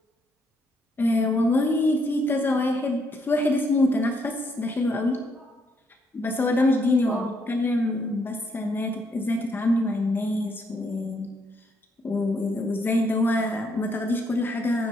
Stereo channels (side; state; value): both; normal; correlation 0.73